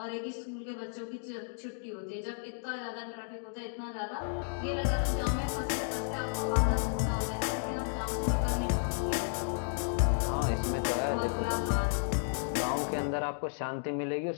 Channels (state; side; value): silent; right; digital silence